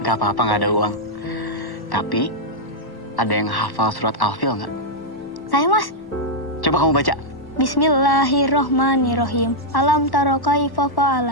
Gak apa-apa, gak ada uang. Tapi, ada yang hafal surat Al-Fil nggak? Saya, Mas. Coba kamu baca. Bismillahirrohmanirrohim. Alam taro kaifa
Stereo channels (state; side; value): late; right; 1.1 ms